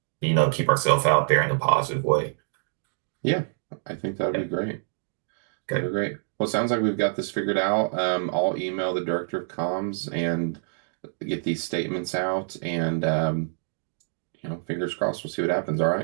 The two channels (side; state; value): left; silent; digital silence